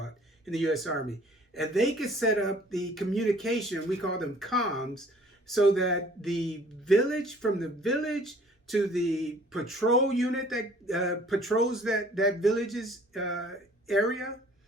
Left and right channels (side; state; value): both; normal; correlation 0.54